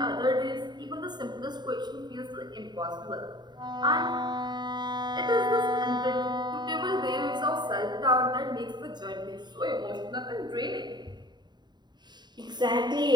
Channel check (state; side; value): late; left; 0.21 ms